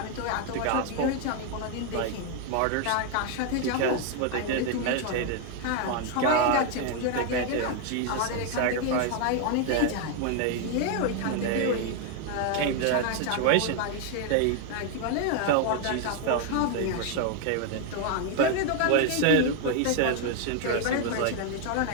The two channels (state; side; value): different; both; correlation 0.01